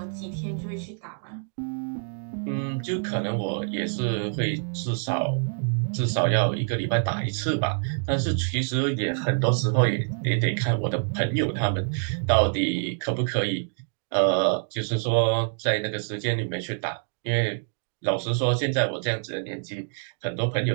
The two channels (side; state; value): left; silent; digital silence